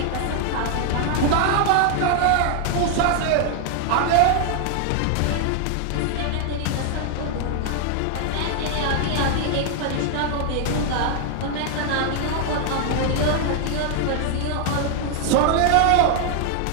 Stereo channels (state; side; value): different; both; correlation 0.00